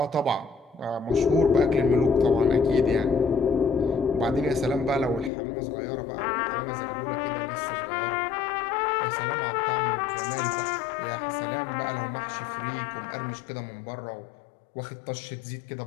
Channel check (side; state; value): right; drops out; at 5.3 s